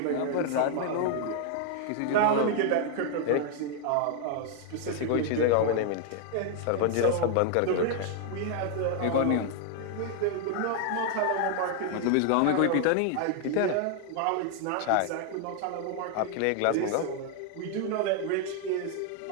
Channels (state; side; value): different; both; correlation 0.00